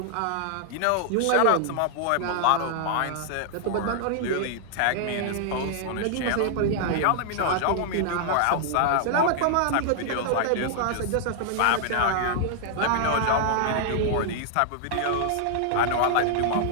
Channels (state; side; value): different; both; correlation -0.01